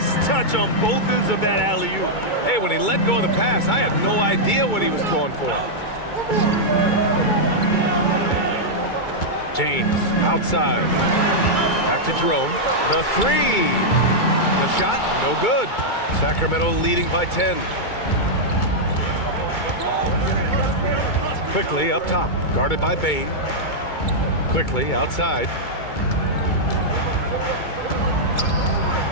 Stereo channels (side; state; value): right; late; 2.2 ms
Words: touch on both ends of that alley-oop. Hey, when he let go of the pass, I had no idea what he was going for. James, outside. Back to Jerome. The 3. The shot, no good. Sacramento leading by 10. Quickly up top, guarded by Bain. Quickly outside.